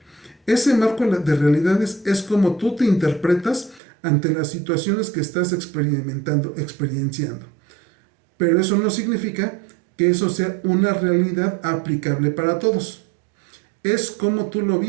Ese marco de realidades es como tú te interpretas ante las situaciones que estás experienciando. Pero eso no significa que eso sea una realidad aplicable para todos. Es como tú lo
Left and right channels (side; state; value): left; drops out; at 3.8 s